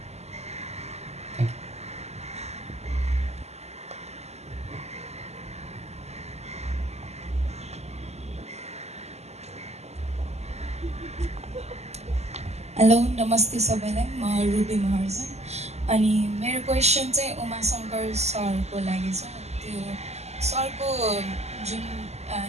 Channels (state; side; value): late; left; 0.32 ms